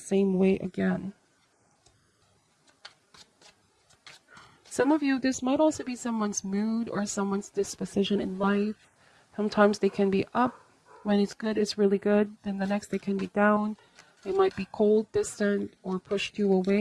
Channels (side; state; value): both; identical; correlation 1.00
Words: way again. Some of you, this might also be someone's mood or someone's disposition in life. Sometimes they can be up. When it's good, it's really good. Then the next they can be down. They might be cold, distant, or pushed you